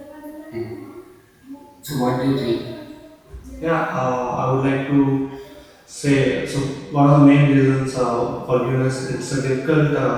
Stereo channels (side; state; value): both; identical; correlation 1.00